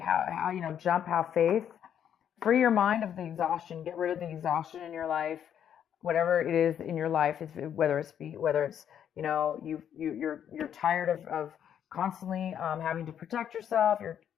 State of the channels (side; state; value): right; quieter; 9.2 dB